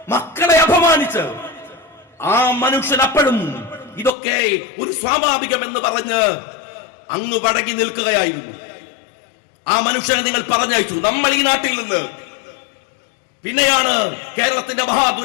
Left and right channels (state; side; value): drops out; right; at 4.1 s